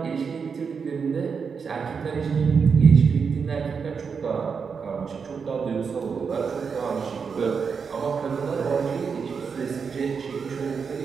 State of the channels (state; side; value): quieter; left; 5.9 dB